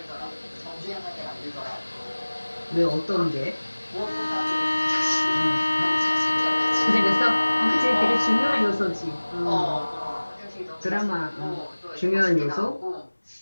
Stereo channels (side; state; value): both; inverted; correlation -1.00